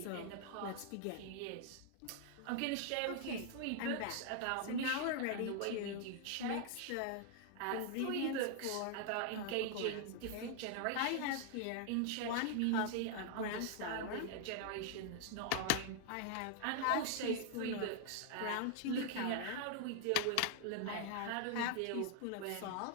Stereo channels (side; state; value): both; different; correlation 0.00